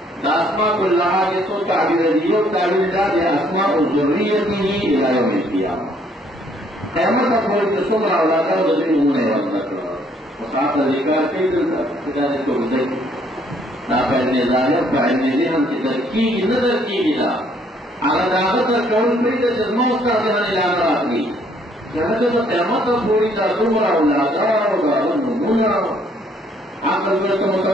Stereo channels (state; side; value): normal; both; correlation 0.65